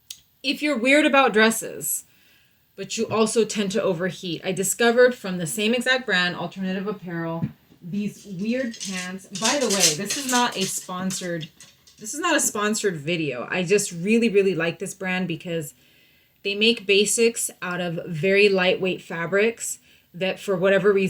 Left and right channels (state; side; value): identical; both; correlation 1.00